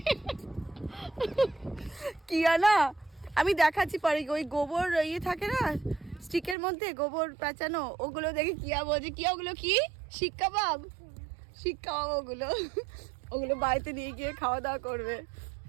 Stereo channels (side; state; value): left; drops out; at 6.6 s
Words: কিয়া না, আমি দেখাচ্ছি পরে। ওই গোবর ইয়ে থাকে না স্টিকের মধ্যে, গোবর পেঁচানো, ওগুলো দেখে কিয়া বলছে কিয়া ওগুলো কি শিক কাবাব, শিক কাবাব ওগুলো। ওগুলো বাড়িতে নিয়ে গিয়ে খাওয়া দাওয়া করবে